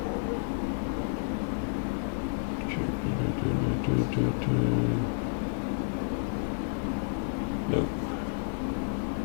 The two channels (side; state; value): right; silent; 55 dB below the other